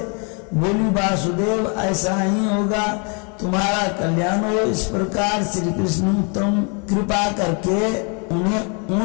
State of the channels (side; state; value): right; quieter; 35.7 dB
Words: बोली, वासुदेव ऐसा ही होगा, तुम्हारा कल्याण हो। इस प्रकार श्री कृष्ण उत्तम कृपा करके उन्हें